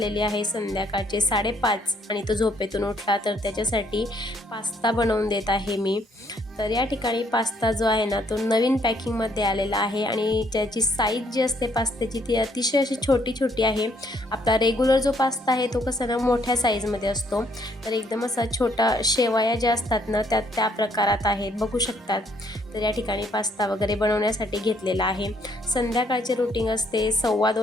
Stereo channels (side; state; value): both; normal; correlation 0.68